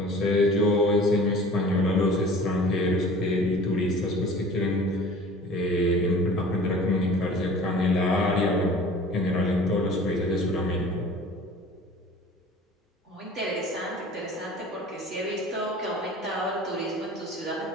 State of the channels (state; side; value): normal; both; correlation 0.44